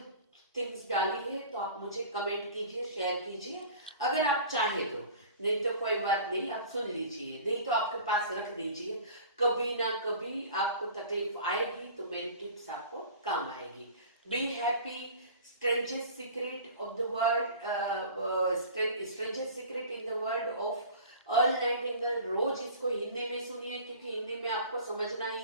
थिंग्स डाली है तो आप मुझे कमेंट कीजिए, शेयर कीजिए, अगर आप चाहे तो। नहीं तो कोई बात नहीं, आप सुन लीजिए, नहीं तो आपके पास रख दीजिए, कभी ना कभी आपको तकलीफ आएगी तो मेरी टिप्स आपको काम आएगी। Be happy, strangest secret of the world, strangest secret in the world of Earl Nightingale. रोज इसको हिंदी में सुनिए, क्योंकि हिंदी में आपको समझना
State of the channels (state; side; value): inverted; both; correlation -0.42